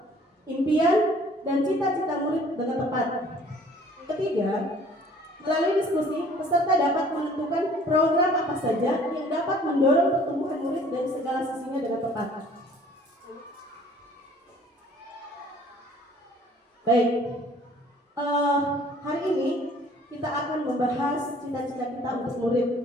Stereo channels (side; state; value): both; normal; correlation 0.54